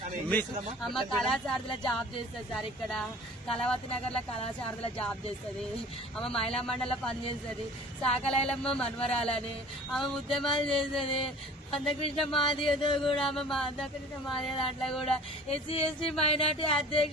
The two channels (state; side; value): normal; both; correlation 0.45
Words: అమ్మ కళాశారదిలో జాబ్ చేస్తుంది సార్. ఇక్కడ కళావతి నగర్ లో కళాశారదిలో జాబ్ చేస్తుంది. ఆమె మహిళా మండలిలో పనిచేస్తుంది. సాకలైలమ్మ మన్వరాలని ఆమె ఉద్యమాలు చేస్తుంది. మందకృష్ణ మాదితో కూడా ఆమె మందకృష్ణ మాదే దాంట్లో కూడా SC/ST మైనార్టీ